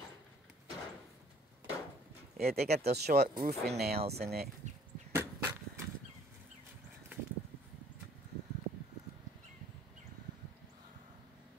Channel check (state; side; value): normal; both; correlation 0.58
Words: Yeah, they got those short roofing nails in it.